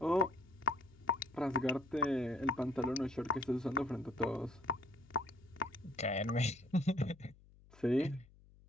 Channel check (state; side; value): noise; left; hum, 25 dB below the sound